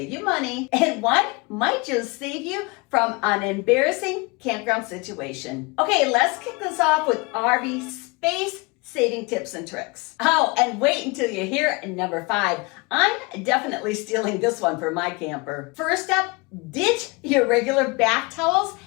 you money, and one might just save you from an embarrassing campground situation. Okay, let's kick this off with RV space saving tips and tricks. Oh, and wait until you hear number 5. I'm definitely stealing this one for my camper. First up, ditch your regular bath towels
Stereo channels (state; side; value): quieter; right; 27.2 dB